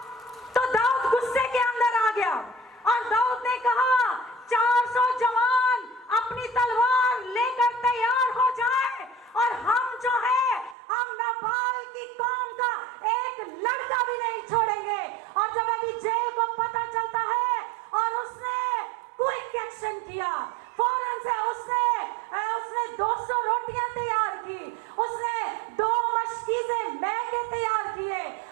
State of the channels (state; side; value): drops out; left; at 10.8 s